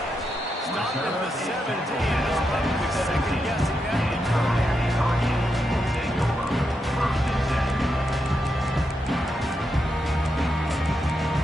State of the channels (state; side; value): normal; both; correlation 0.84